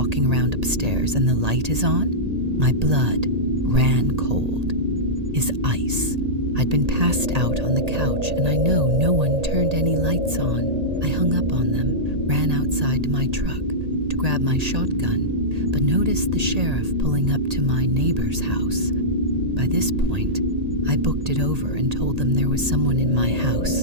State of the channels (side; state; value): left; late; 1.8 ms